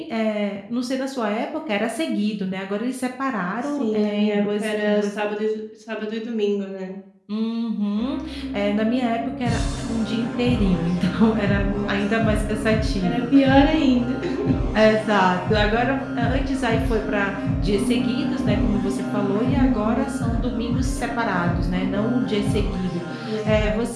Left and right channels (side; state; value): both; identical; correlation 1.00